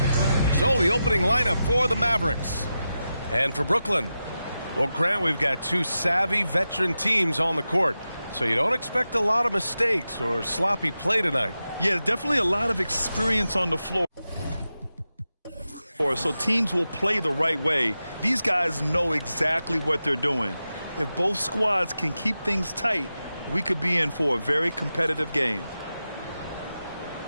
So the opening lineup for the Mavericks. And for Brooklyn, well, Grant, we've got two savvy veteran teams on the court. So you don't expect a lot of mistakes or sloppy play tonight. Yeah, definitely a lot of experience on the floor. So teams will play the right way. These guys know exactly what they're doing. If both squads can keep things tight, we could be in for a very competitive game.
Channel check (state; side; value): inverted; both; correlation -0.91